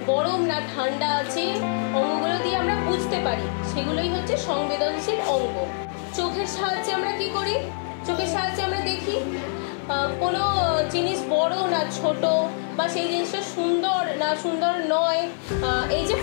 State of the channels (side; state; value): right; silent; digital silence